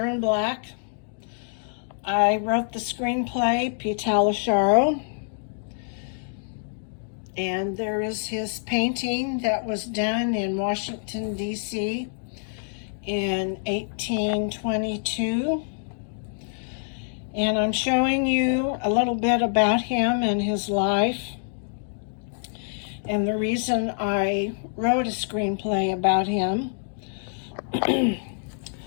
Black. I wrote the screenplay, Pitalasharo, and there is his painting that was done in Washington, D.C. in 1822. And I'm showing you a little bit about him and his life, and the reason I wrote a screenplay about him.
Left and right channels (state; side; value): silent; right; digital silence